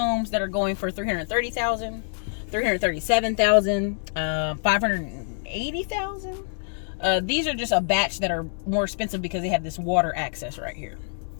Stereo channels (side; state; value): right; silent; 61 dB below the other